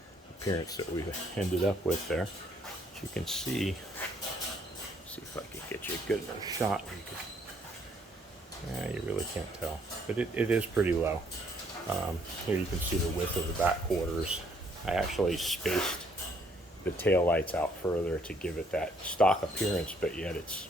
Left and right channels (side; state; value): both; normal; correlation 0.66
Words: appearance that we've ended up with there. As you can see if I can get you a good enough shot where you can, you really can't tell, but it is pretty low. Here you can see the width of the back quarters. I actually spaced the tail lights out further to give it that stock appearance, but yet it's